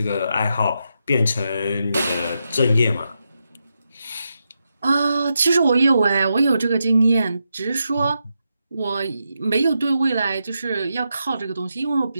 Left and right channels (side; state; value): both; inverted; correlation -0.85